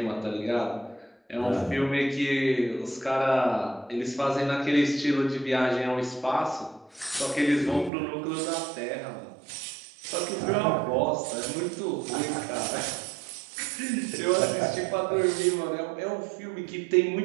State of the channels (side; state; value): left; drops out; at 7.9 s